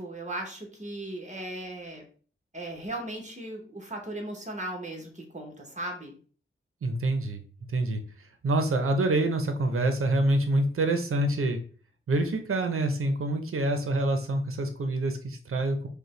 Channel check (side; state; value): both; normal; correlation 0.59